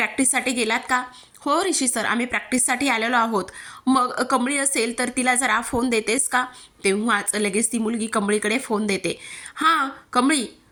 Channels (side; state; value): both; identical; correlation 1.00